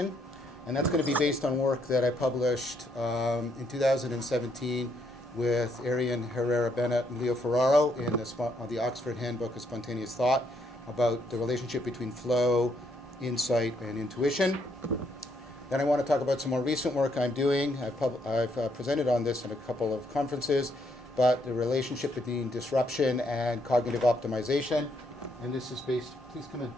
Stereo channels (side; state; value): both; normal; correlation 0.73